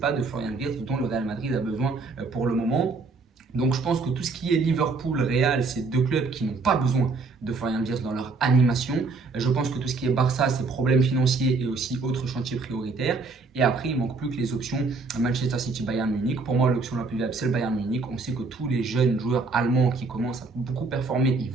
de Florian Wirtz dont le Real Madrid a besoin pour le moment. Donc je pense que tout ce qui est Liverpool, Real, c'est deux clubs qui n'ont pas besoin de Florian Wirtz dans leur animation. Je pense que tout ce qui est Barça, c'est problèmes financiers et aussi autres chantiers prioritaires. Et après, il ne manque plus que les options Manchester City, Bayern Munich. Pour moi, l'option la plus viable, c'est le Bayern Munich. On sait que tous les jeunes joueurs allemands qui commencent à beaucoup performer, ils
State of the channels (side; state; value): left; quieter; 4.1 dB